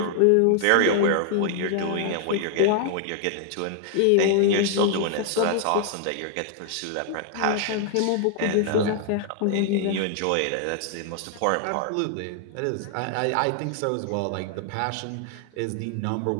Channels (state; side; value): different; both; correlation 0.00